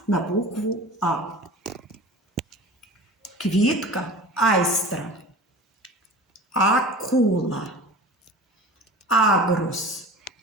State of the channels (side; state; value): both; normal; correlation 0.37